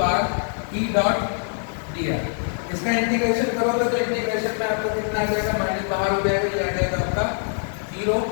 R E dot dr। इसका इंटीग्रेशन करोगे तो इंटीग्रेशन में आपको कितना आ जाएगा, माइनस बाहर हो जाएगा, ये आ जाएगा आपका 0।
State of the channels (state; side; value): silent; right; digital silence